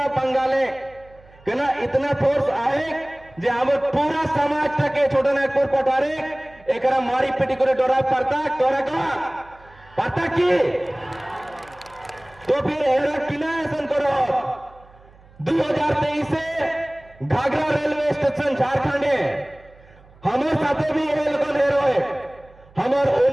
बंगाले कि ना इतना फोर्स आए जे हमार पूरा समाज तक छोटा नागपुर पठारे एकरा मारी पिटी करे डरा पड़ता तोरा का पता की तो फिर एरा किना ऐसा करो 2023 से घाघरा रेलवे स्टेशन झारखंड हमारे साथे भी ये लोग हेरो है हमार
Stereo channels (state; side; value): noise; right; hum, 26 dB below the sound